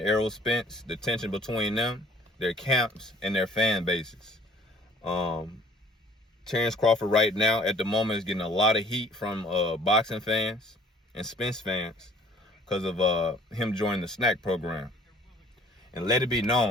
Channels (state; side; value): normal; both; correlation 0.54